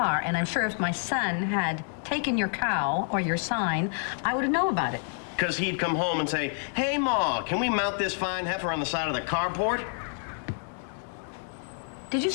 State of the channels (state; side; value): silent; right; 59 dB below the other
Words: and I'm sure if my son had taken your cow or your sign, I would have known about it. Because he'd come home and say, "Hey, Ma, can we mount this fine heifer on the side of the carport?" Did you